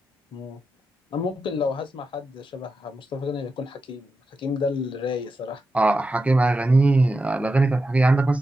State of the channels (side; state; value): both; normal; correlation 0.89